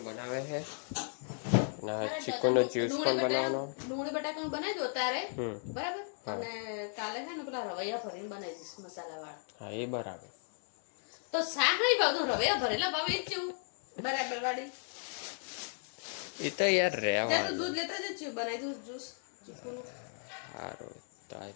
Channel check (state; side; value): silent; right; 54 dB below the other